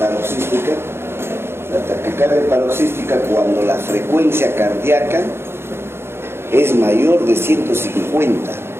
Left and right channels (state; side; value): late; left; 0.12 ms